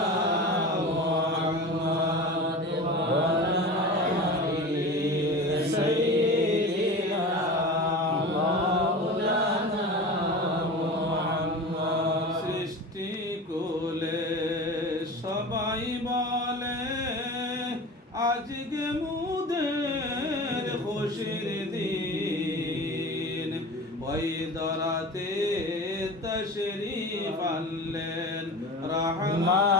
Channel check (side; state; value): both; normal; correlation 0.33